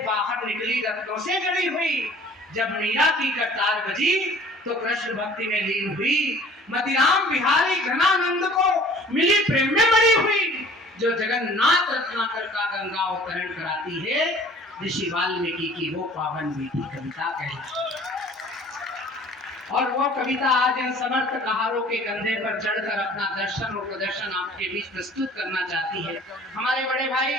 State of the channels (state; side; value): normal; both; correlation 0.50